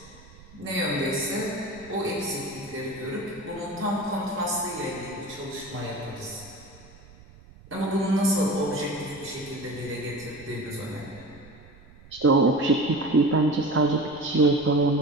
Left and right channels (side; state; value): right; noise; rumble, 22 dB below the sound